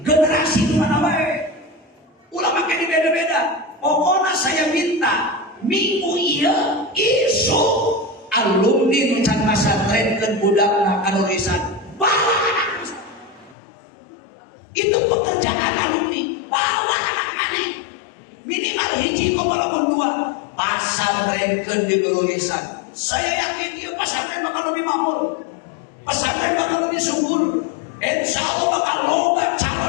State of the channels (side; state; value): right; drops out; at 13.6 s